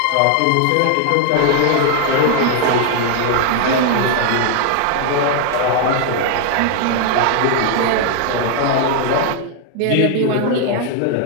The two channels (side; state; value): both; different; correlation 0.00